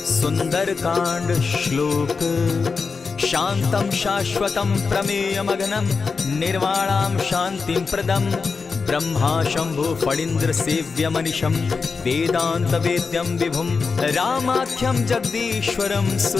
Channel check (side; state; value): right; quieter; 4.8 dB